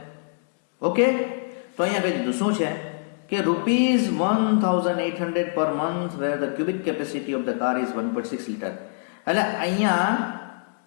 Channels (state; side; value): silent; right; digital silence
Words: ઓકે, તો અહીંયા કહી દીધું શું છે કે ₹1,800 per month where the cubic capacity of the car is 1.6 liter. એટલે અહીંયા